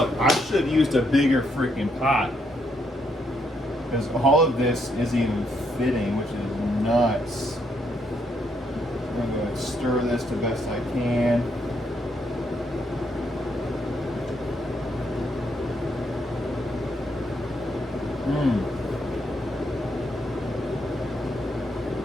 I should have used a bigger freaking pot, because all of this isn't even fitting, which is nuts. I'm going to stir this the best I can.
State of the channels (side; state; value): both; normal; correlation 0.75